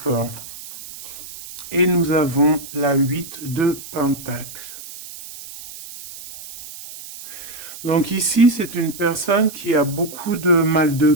et nous avons la 8 de pentacle. Donc ici, c'est une personne qui a beaucoup de mal de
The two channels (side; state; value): right; noise; hiss, 14 dB below the sound